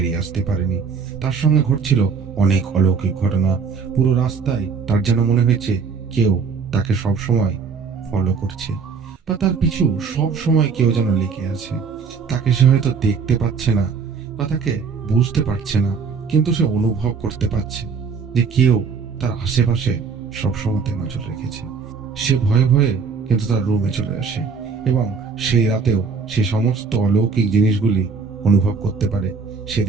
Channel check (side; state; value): left; quieter; 5.4 dB